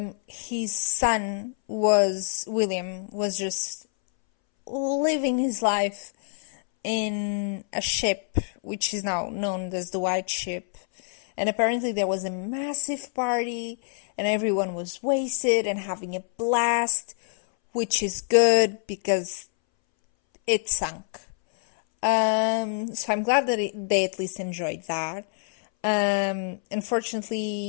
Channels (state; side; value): silent; right; 61 dB below the other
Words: his son William was just living his life in a ship, which is now known as the White Ship. And apparently there was a massive party and everyone was wasted and having a blast, which is good because it sunk. So I'm glad that they at least enjoyed that.